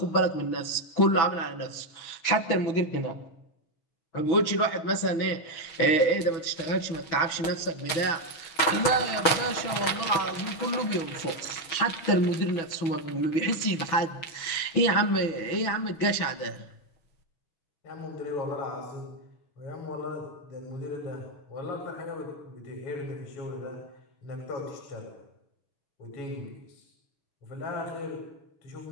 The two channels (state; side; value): late; right; 6.1 ms